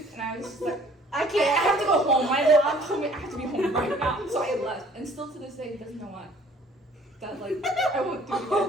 and I was just like, I have to go home. My mom told me I have to be home right now, so I left. And still to this day, he doesn't know why. That like I won't do it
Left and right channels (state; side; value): normal; both; correlation 0.55